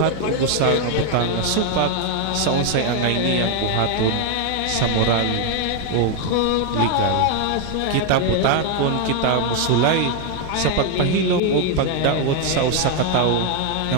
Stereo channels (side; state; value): both; different; correlation 0.01